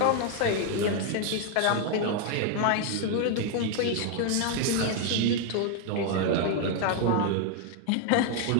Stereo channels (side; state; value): both; different; correlation 0.00